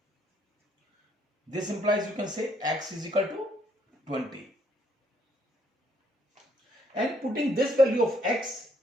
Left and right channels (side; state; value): both; normal; correlation 0.69